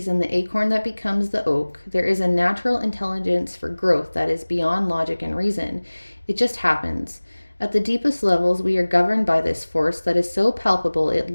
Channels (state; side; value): inverted; both; correlation -1.00